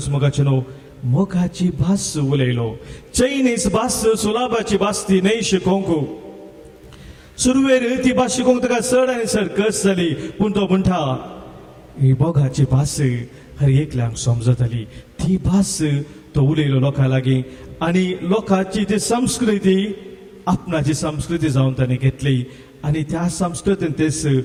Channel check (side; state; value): both; identical; correlation 1.00